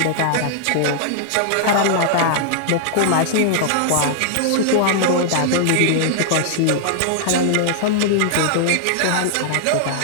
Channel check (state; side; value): different; both; correlation -0.01